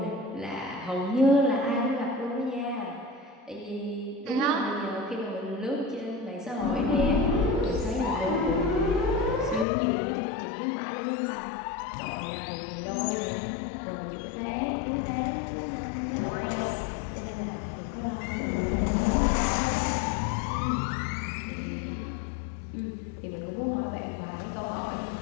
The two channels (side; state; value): right; drops out; at 9.7 s